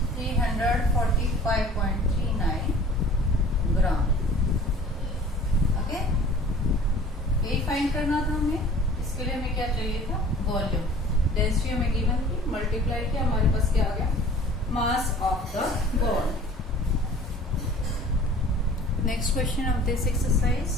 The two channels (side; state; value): both; normal; correlation 0.47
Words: 345.39 gram. Okay, यही फाइंड करना था हमें. इसके लिए हमें क्या चाहिए था? वॉल्यूम. डेंसिटी हमें गिवन थी, मल्टीप्लाई किया, हमारे पास क्या आ गया? Mass of the ball. Next question of this exercise.